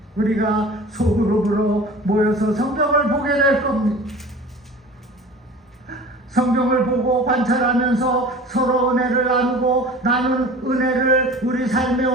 우리가 소그룹으로 모여서 성경을 보게 될 겁니다. 성경을 보고 관찰하면서 서로 은혜를 나누고 나는 은혜를 우리 삶에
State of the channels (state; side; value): normal; both; correlation 0.40